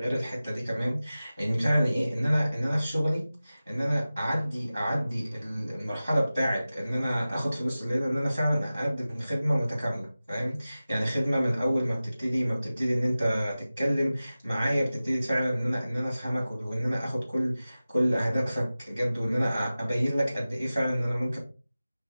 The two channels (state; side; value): inverted; both; correlation -0.96